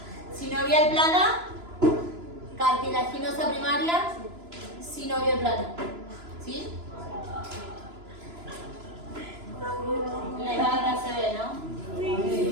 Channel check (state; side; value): late; left; 3.0 ms